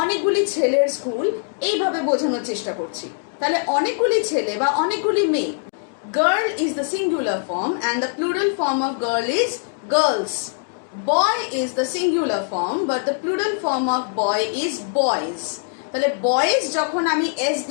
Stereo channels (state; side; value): silent; right; 64 dB below the other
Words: অনেকগুলি ছেলের স্কুল, এইভাবে বোঝানোর চেষ্টা করছি। তাহলে অনেকগুলি ছেলে বা অনেকগুলি মেয়ে। Girl is the singular form and the plural form of girl is girls. Boy is the singular form but the plural form of boy is boys. তাহলে বয়েজ যখন আমি এস